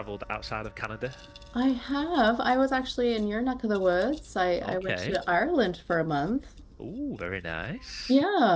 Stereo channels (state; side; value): identical; both; correlation 1.00